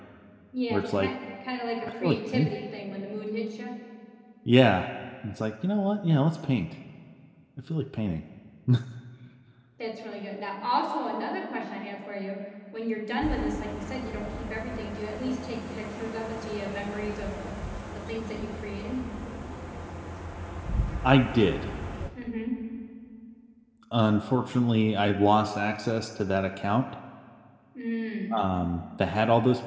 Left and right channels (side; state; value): both; identical; correlation 1.00